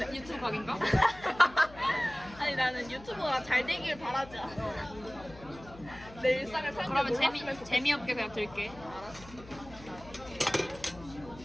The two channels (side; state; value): left; noise; hum, 19 dB below the sound